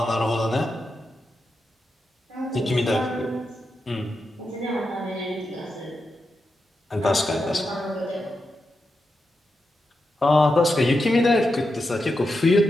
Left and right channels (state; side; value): normal; both; correlation 0.87